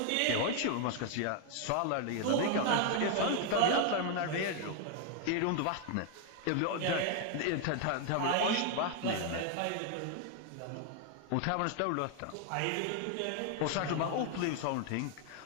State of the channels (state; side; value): different; both; correlation 0.01